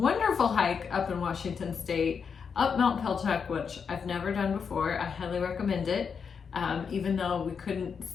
hike up in Washington State, up Mount Pelchac, which I've never done before. I highly recommend it. Even though we couldn't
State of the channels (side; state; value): right; quieter; 6.3 dB